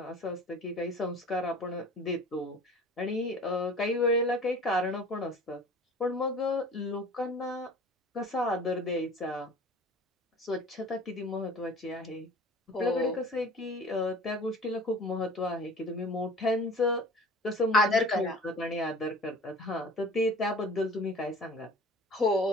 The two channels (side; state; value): both; normal; correlation 0.44